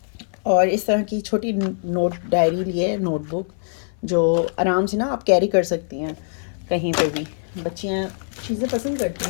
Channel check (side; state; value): right; silent; 58 dB below the other